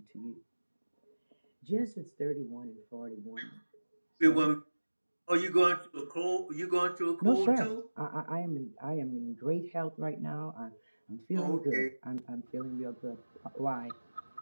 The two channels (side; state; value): both; inverted; correlation -1.00